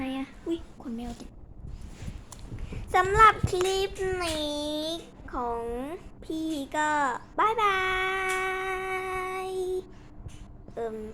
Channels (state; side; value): identical; both; correlation 1.00